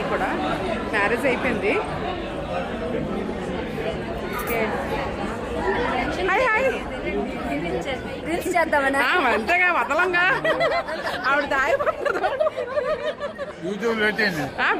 కూడా మ్యారేజ్ అయిపోయింది. Hi hi. అంతేగా వదలంగా ఆవిడ దాయిపోతుంది.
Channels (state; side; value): identical; both; correlation 1.00